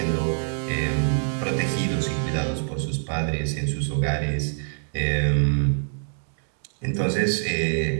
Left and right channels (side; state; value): left; silent; digital silence